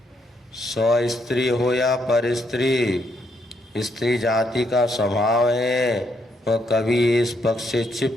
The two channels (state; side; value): normal; both; correlation 0.75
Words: स्व स्त्री हो या पर स्त्री, स्त्री जाति का स्वभाव है, वह कभी इस पक्ष से